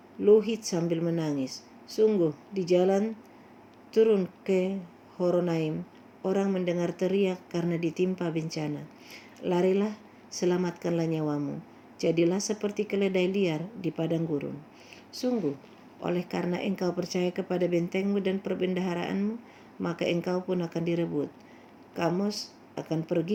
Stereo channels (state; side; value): identical; both; correlation 1.00